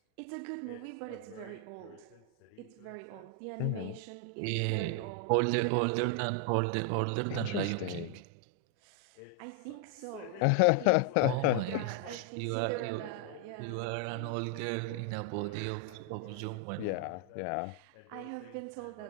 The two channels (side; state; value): both; different; correlation 0.00